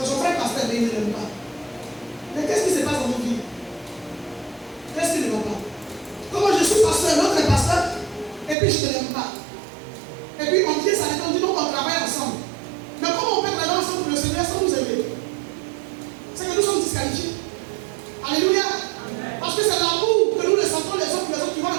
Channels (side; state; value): left; drops out; at 8.6 s